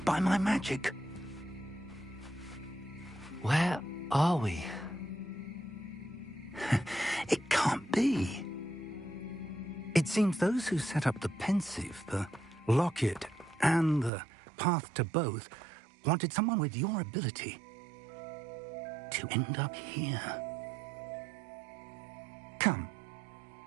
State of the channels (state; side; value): drops out; left; at 14.1 s